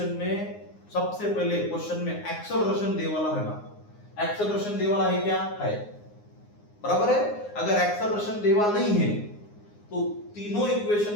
में सबसे पहले क्वेश्चन में एक्सेलरेशन दे वाला है ना, एक्सेलरेशन दे वाला है क्या? है, बराबर है। अगर एक्सेलरेशन दे वाला नहीं है तो तीनों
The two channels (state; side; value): late; right; 9.7 ms